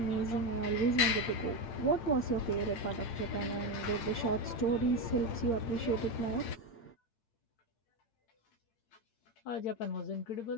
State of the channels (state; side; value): late; right; 8.8 ms